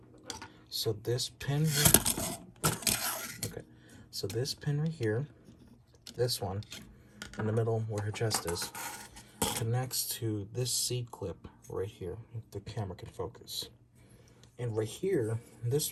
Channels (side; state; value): both; identical; correlation 1.00